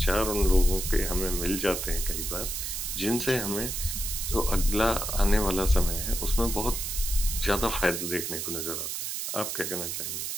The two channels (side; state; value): right; noise; hiss, 3 dB below the sound